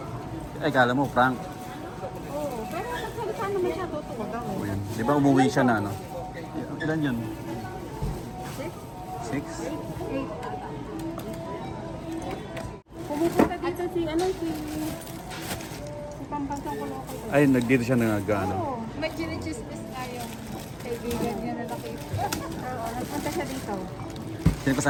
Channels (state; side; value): identical; both; correlation 1.00